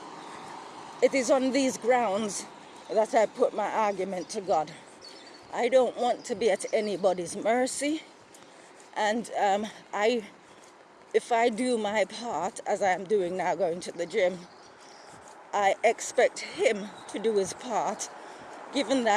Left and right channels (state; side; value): identical; both; correlation 1.00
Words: It is on these grounds that I put my argument to God. I don't want to be at anybody's mercy, and if I do my part, as I am doing now, going to the gym, I expect him to do his part, given